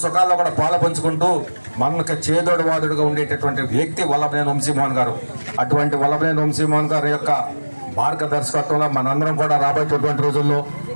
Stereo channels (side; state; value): both; inverted; correlation -1.00